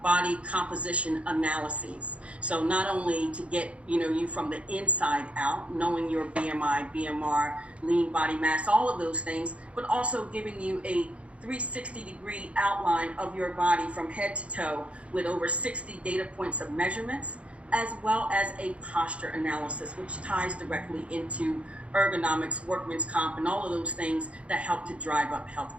body composition analyses. So not only to get you from the inside out, knowing your BMI, BMR, lean body mass, all of those things, but also giving you a 360-degree outline of your body from head to toe with over 60 data points of measurements, as well as a posture analysis, which ties directly into ergonomics, workman's comp, and all of those things that help to drive up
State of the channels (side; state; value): left; late; 0.062 ms